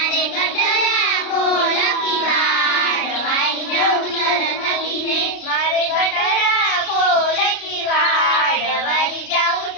गटरा खोल की वाड़, वारी जाऊं सरस्वती ने, मारे गटरा खोल की वाड़, वारी जाऊं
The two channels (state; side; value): late; right; 33 ms